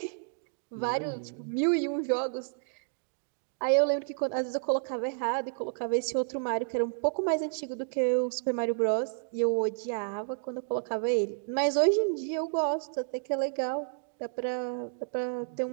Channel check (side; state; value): left; silent; digital silence